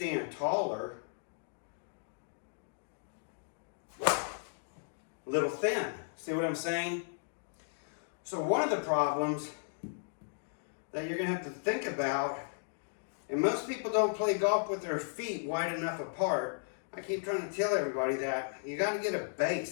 taller. A little thin. See what I'm saying? So one of the problems that you're going to have to think about, and most people don't play golf with their feet wide enough apart. I keep trying to tell everybody that. You got to get a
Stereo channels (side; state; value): right; silent; digital silence